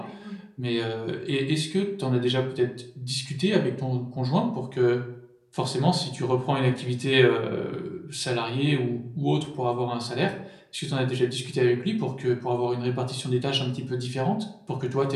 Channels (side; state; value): both; identical; correlation 1.00